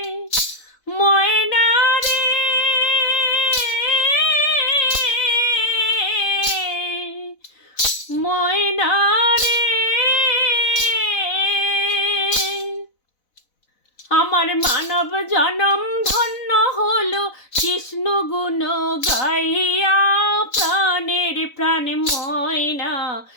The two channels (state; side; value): late; right; 4.0 ms